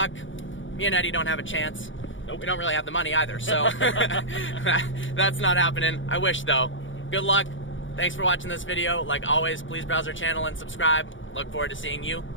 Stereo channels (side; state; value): right; late; 0.56 ms